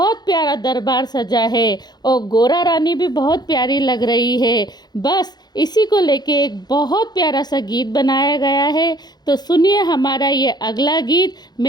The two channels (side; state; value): right; late; 0.20 ms